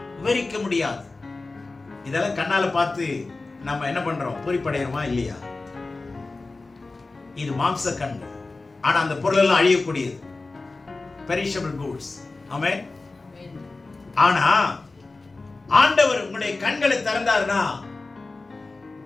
விவரிக்க முடியாது. இதெல்லாம் கண்ணால பார்த்து நம்ம என்ன பண்றோம், பூரிப்படைகிறோமா இல்லையா? இது மாம்ச கண்கள். ஆனா அந்த பொருள் எல்லாம் அழியக்கூடியது, பெரிஷபிள் கூட்ஸ். ஆமென். ஆனா ஆண்டவர் உங்களுடைய கண்களை திறந்தார்னா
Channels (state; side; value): quieter; right; 3.5 dB